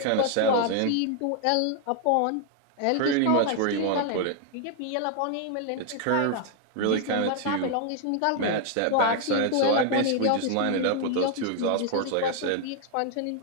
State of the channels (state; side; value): different; both; correlation 0.00